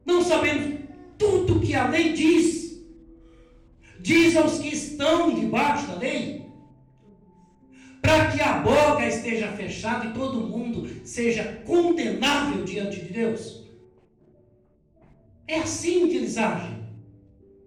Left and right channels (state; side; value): identical; both; correlation 1.00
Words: Não sabemos tudo que a lei diz aos que estão debaixo da lei, para que a boca esteja fechada e todo mundo seja condenável diante de Deus. É assim que eles agem.